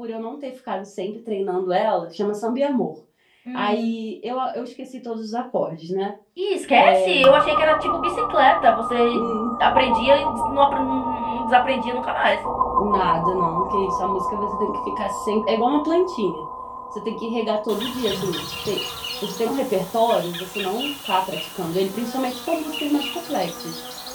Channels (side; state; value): both; identical; correlation 1.00